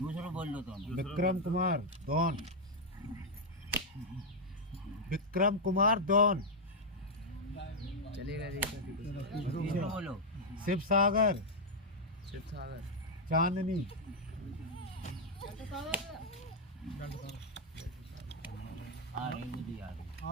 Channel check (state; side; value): normal; both; correlation -0.02